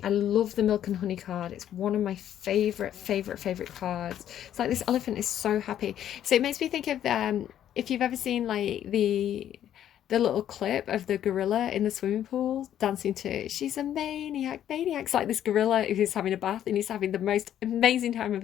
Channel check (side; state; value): right; quieter; 10.8 dB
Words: I love the milk and honey card. It's one of my favorite cards. It's like this elephant is so happy. So it makes me think of if you've ever seen like the little clip of the gorilla in the swimming pool dancing to "She's a Maniac." It's like this gorilla who's having a bath and he's having the most amazing time of